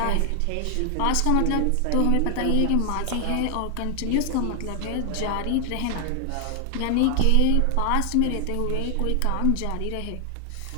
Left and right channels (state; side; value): different; both; correlation 0.00